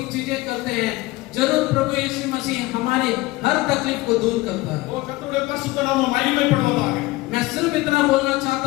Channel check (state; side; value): quieter; right; 20.4 dB